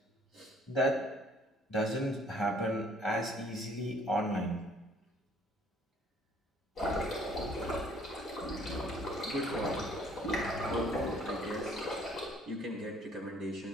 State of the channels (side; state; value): both; normal; correlation 0.59